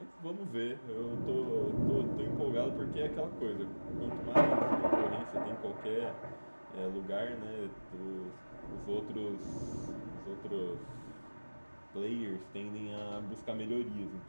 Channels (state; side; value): inverted; both; correlation -1.00